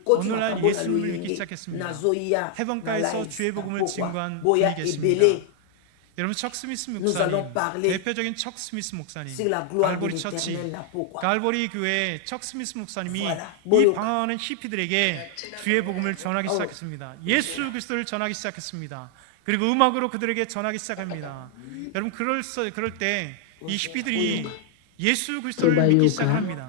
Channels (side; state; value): both; different; correlation 0.00